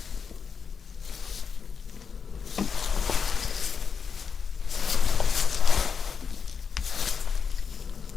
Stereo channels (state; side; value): quieter; right; 6.1 dB